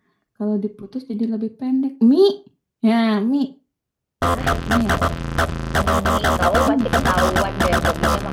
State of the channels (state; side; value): identical; both; correlation 1.00